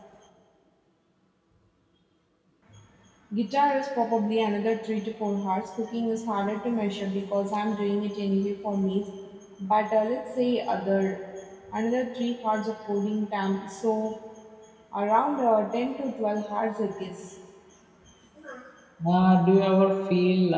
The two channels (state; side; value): identical; both; correlation 1.00